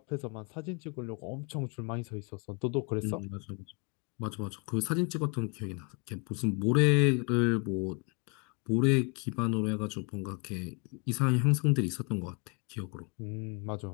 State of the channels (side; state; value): right; quieter; 33.7 dB